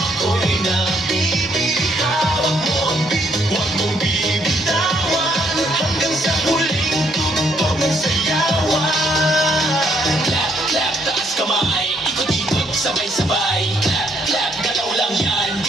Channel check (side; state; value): both; normal; correlation 0.71